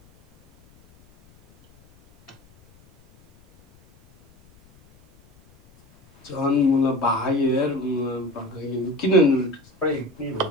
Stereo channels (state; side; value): noise; left; rumble, 30 dB below the sound